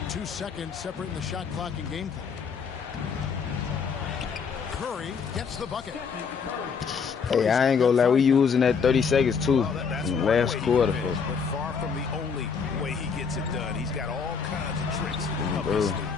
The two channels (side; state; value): right; quieter; 5.9 dB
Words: 2 seconds separating the shot clock and game clock. Curry gets the bucket. Hey, I ain't gonna lie, we using that 30 seconds too in the last quarter. But far from the only way he gets it done. He's got all kinds of tricks up his sleeve.